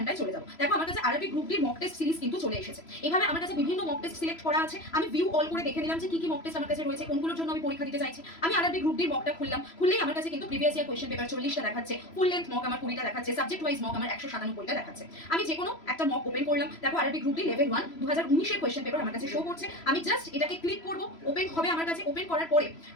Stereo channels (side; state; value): right; late; 3.0 ms